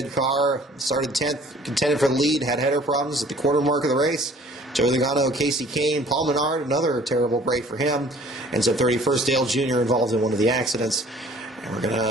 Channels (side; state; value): both; normal; correlation 0.53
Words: car, started 10th, contended for the lead, had header problems at the quarter mark of the race. Joey Logano, Casey Kane, Paul Menard, another terrible break for him. Ends up 31st. Dale Jr. involved in one of the accidents. And we're going